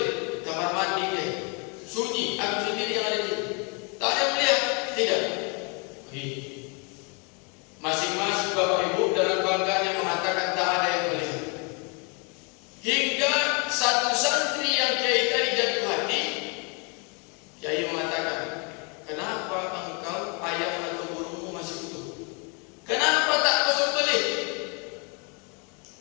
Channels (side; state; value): right; quieter; 34.1 dB